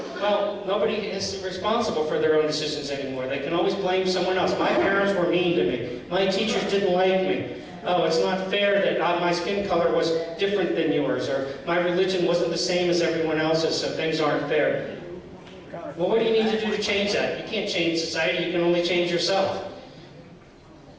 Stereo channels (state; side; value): identical; both; correlation 1.00